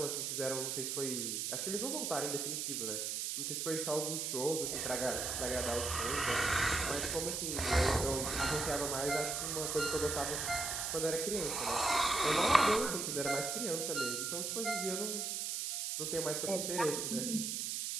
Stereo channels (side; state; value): right; noise; hiss, 1 dB below the sound